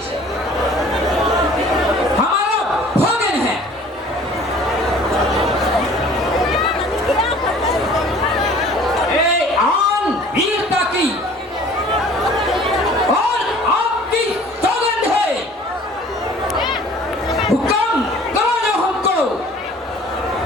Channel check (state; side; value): normal; both; correlation 0.50